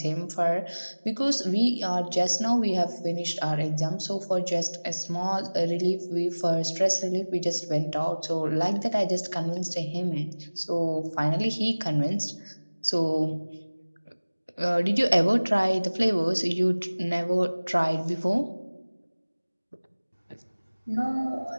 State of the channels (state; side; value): inverted; both; correlation -1.00